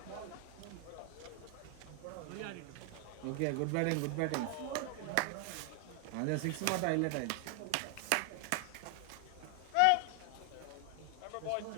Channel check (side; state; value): both; different; correlation 0.00